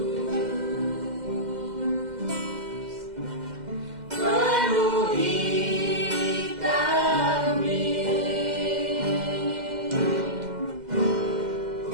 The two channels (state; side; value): late; left; 2.1 ms